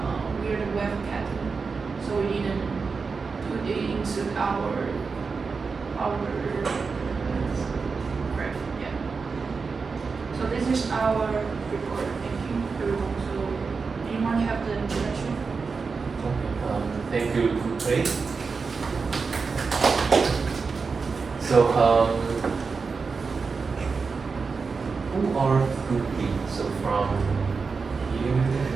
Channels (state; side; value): quieter; left; 4.8 dB